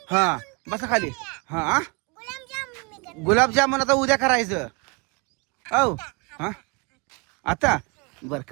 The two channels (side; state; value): left; quieter; 28.0 dB